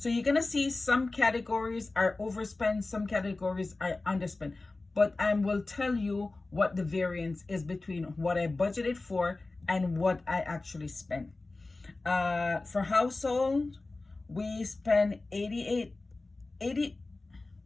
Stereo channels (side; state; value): right; quieter; 3.3 dB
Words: you're gonna see some categories are overspent, some categories are underspent, but I will tell you what the variance is between what I budgeted for and what I actually spent. For household, we spent